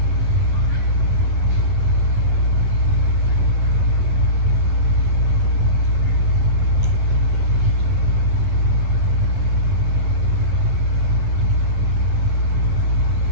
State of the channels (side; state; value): left; late; 11 ms